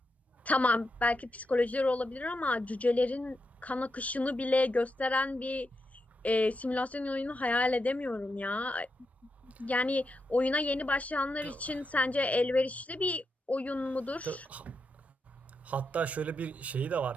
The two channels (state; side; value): normal; both; correlation 0.85